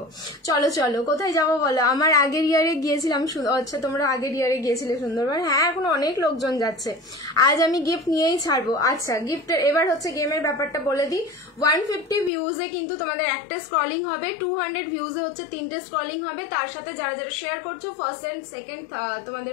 চলো চলো কোথায় যাবো বলো? আমার আগের ইয়ারে গিয়েছিলাম, আচ্ছা তোমরা আগের ইয়ারে গিয়েছিলে সুন্দরবন, হ্যাঁ এখন অনেক লোকজন যাচ্ছে। আজ আমি গিফট নিয়েই ছাড়বো। আচ্ছা গিফটের এবার হচ্ছে গেমের ব্যাপারটা বলে দিই। 150 ভিউজে কিন্তু তোমাদের একটা স্ক্রলিং হবে, 200 ভিউজে হচ্ছে 3টে স্ক্রলিং হবে, তার সাথে যারা যারা শেয়ার করছো ফার্স্ট এন্ড সেকেন্ড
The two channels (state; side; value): drops out; right; at 12.3 s